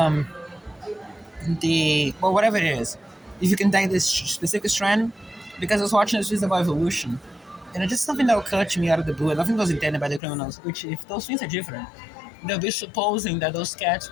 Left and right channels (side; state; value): right; drops out; at 10.2 s